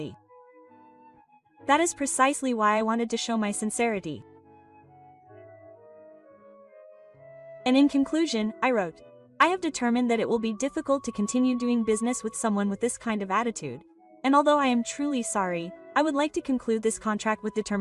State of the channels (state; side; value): identical; both; correlation 1.00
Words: That is precisely why I wanted to show my sincerity. And in conclusion, I wrote, I have determined that it will be difficult to continue doing business with someone with this kind of attitude, and although I am truly sorry, I would like to conclude this contract with